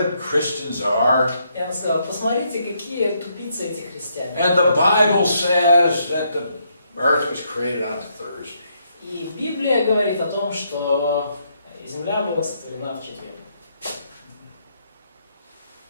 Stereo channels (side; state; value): both; inverted; correlation -0.75